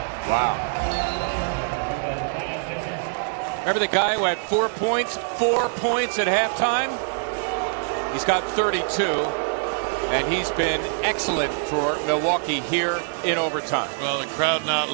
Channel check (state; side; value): silent; left; 63 dB below the other